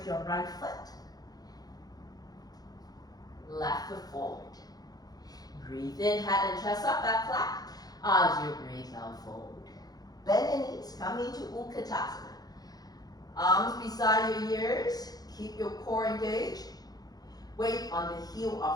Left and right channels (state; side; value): late; right; 0.19 ms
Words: your right foot. Left foot forward. Breathe in, head and chest up, back flat. As you breathe out, forward. Bend your knees, come into Utkatasana. Arms beside your ears. Keep your core engaged. Weight on the heel